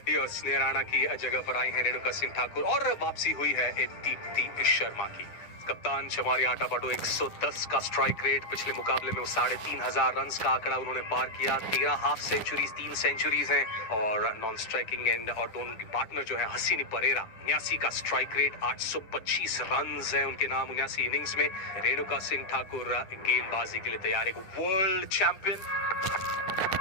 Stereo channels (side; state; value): right; late; 9.8 ms